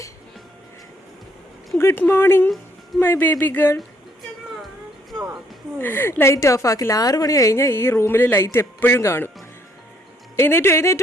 Good morning my baby girl. Light off ആക്കില്ല. 6 മണി കഴിഞ്ഞാൽ ഈ റൂമിൽ ലൈറ്റ് എപ്പോഴും കാണും.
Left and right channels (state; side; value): normal; both; correlation 0.68